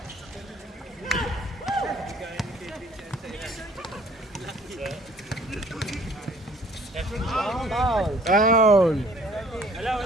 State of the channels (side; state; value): both; normal; correlation 0.56